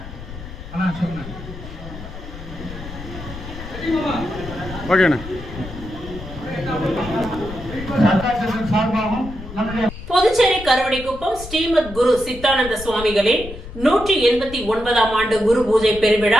ஓகேண்ணா. புதுச்சேரி கருவடிக்குப்பம் ஸ்ரீமத் குரு சித்தானந்த சுவாமிகளின் 189ஆம் ஆண்டு குரு பூஜை பெருவிழா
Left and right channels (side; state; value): left; noise; rumble, 12 dB below the sound